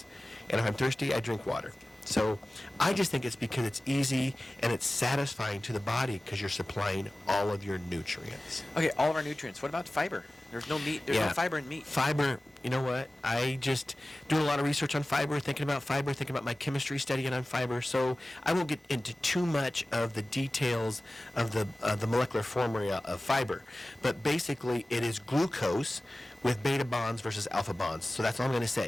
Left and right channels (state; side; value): normal; both; correlation 0.97